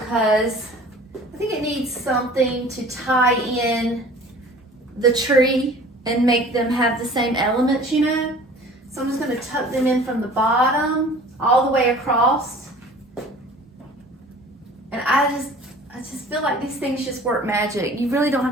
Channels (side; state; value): both; normal; correlation 0.46